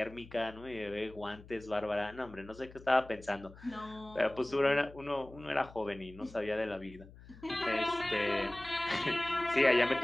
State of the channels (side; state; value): left; noise; hum, 20 dB below the sound